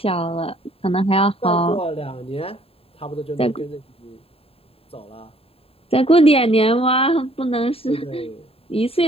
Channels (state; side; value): late; right; 0.28 ms